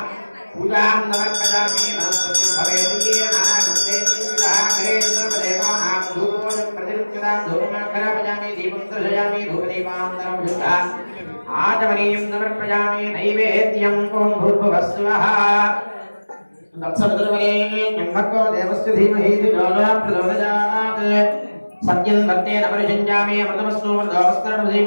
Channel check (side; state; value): both; inverted; correlation -1.00